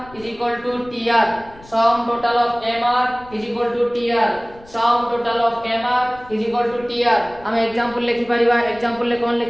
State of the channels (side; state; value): left; noise; rumble, 23 dB below the sound